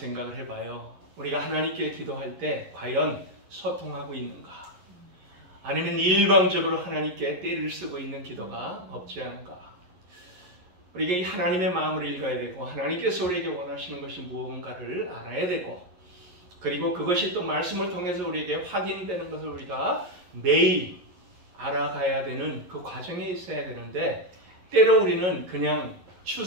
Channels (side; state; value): left; late; 11 ms